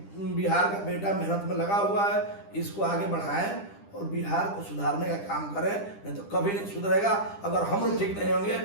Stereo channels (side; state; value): right; late; 10 ms